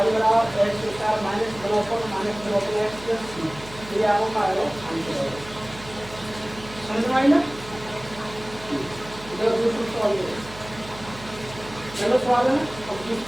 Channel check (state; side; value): noise; right; hum, 17 dB below the sound